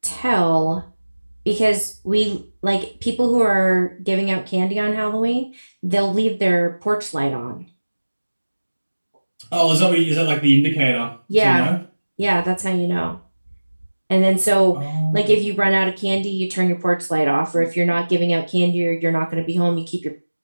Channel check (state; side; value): inverted; both; correlation -1.00